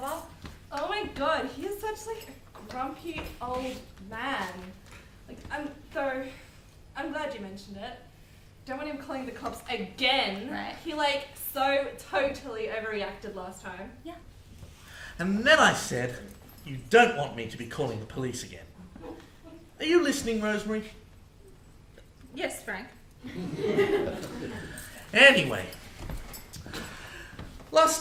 Oh my god, he is such like a grumpy old man. Like, I'm glad you mentioned it. Don't want him calling the cops again. Right. He like so totally overreacted last time. Yeah. And then I said, you don't want me to be calling the police again. Are you listening, Rosemary? Yes, Frank. Anyway,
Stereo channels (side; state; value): both; identical; correlation 1.00